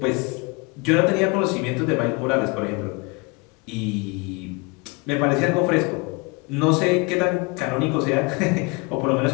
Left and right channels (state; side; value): quieter; right; 28.5 dB